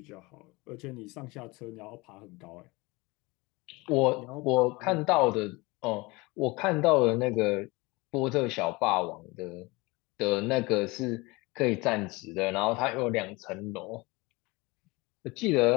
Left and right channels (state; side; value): quieter; right; 24.1 dB